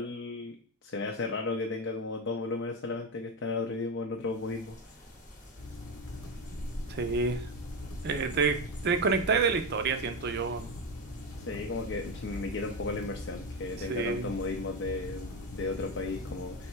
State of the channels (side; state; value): both; normal; correlation 0.14